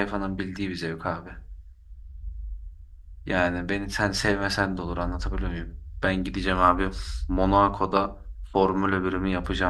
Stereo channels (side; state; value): both; identical; correlation 1.00